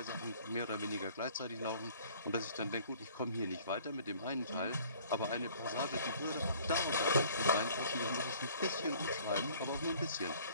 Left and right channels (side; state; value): both; inverted; correlation -0.54